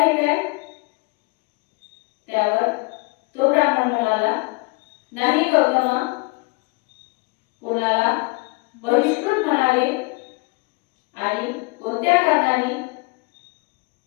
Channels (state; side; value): quieter; right; 26.5 dB